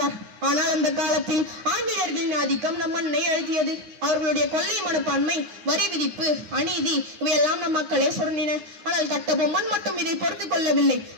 ஆனால் அந்த காலத்தில் ஆங்கிலேயர்களின் ஆதிக்கம் நம் மண்ணை அழுத்தியது. அவர்களுடைய கொள்ளை மனப்பான்மை, வரி விதிப்பு, அநீதி இவையெல்லாம் நம் மக்களே சுரண்டின. ஆனால் கட்டபொம்மன் மட்டும் இதை பொறுத்துக் கொள்ளவில்லை.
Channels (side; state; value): left; late; 9.6 ms